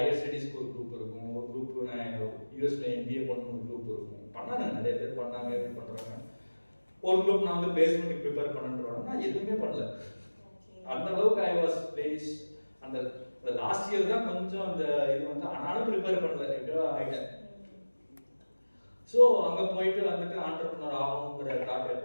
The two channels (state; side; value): inverted; both; correlation -1.00